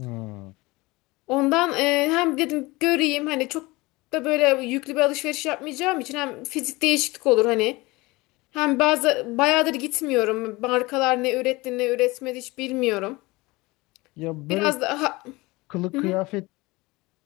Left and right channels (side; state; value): right; quieter; 22.3 dB